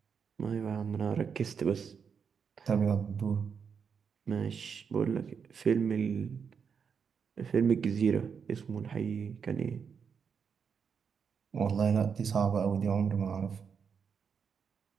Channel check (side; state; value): left; quieter; 6.5 dB